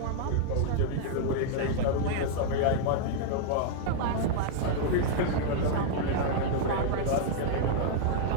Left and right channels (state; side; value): different; both; correlation -0.01